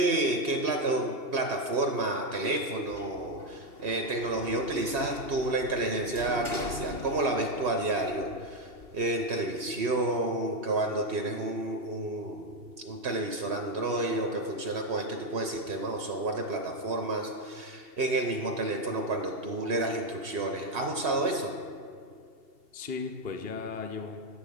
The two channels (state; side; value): late; left; 2.8 ms